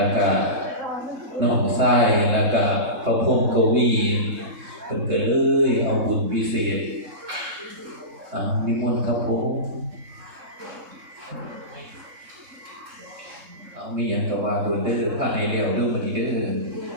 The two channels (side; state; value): left; late; 3.7 ms